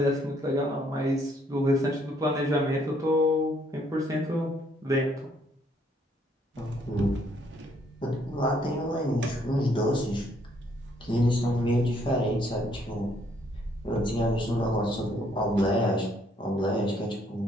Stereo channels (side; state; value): both; normal; correlation 0.68